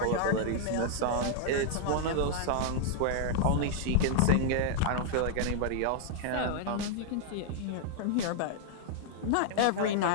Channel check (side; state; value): both; different; correlation 0.00